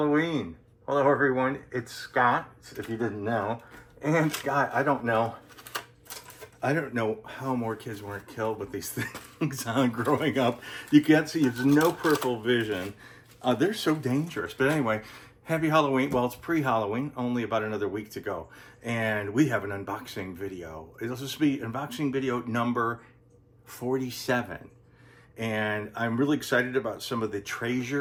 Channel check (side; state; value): both; identical; correlation 1.00